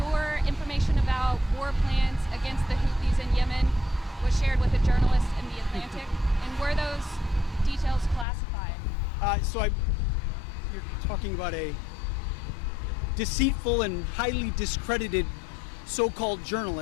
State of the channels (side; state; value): right; drops out; at 8.2 s